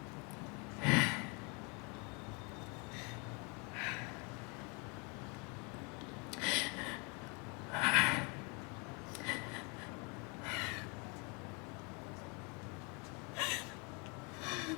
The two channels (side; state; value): right; quieter; 32.2 dB